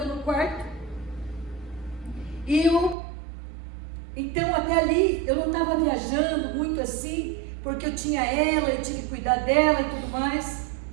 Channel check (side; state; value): left; drops out; at 3.0 s